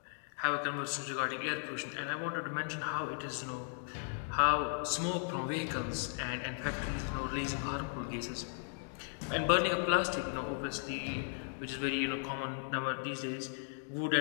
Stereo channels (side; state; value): right; silent; 53 dB below the other